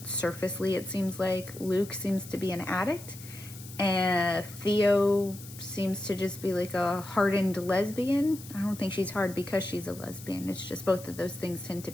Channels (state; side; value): noise; left; hiss, 16 dB below the sound